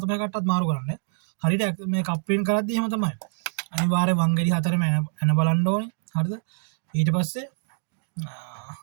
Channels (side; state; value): left; silent; digital silence